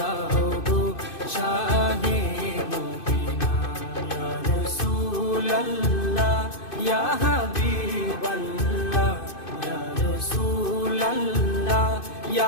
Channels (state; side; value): late; right; 2.5 ms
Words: গো শাহে মদিনা। ইয়া রাসূলাল্লাহ ইয়া হাবিবাল্লাহ, ইয়া রাসূলাল্লাহ